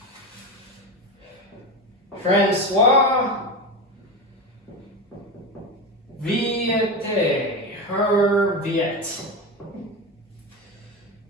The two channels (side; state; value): both; normal; correlation 0.20